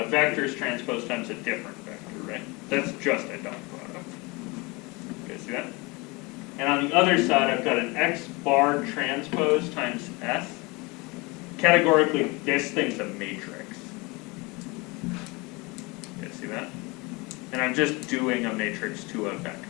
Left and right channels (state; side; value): quieter; right; 25.9 dB